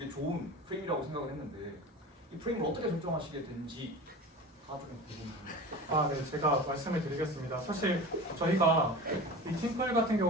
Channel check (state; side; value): normal; both; correlation 0.34